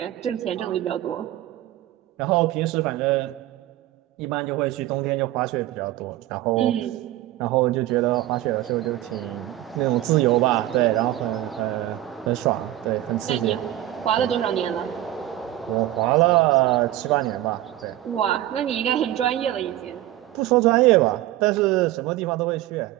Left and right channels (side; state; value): left; quieter; 14.5 dB